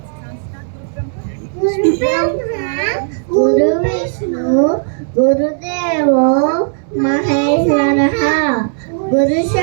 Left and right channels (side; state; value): left; silent; digital silence